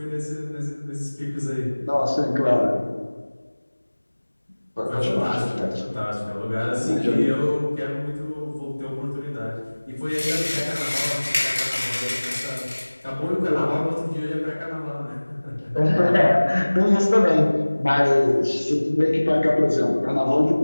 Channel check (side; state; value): both; inverted; correlation -1.00